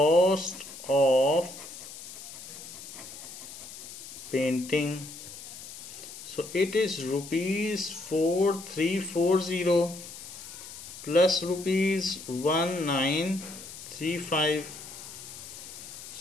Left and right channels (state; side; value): noise; left; hiss, 13 dB below the sound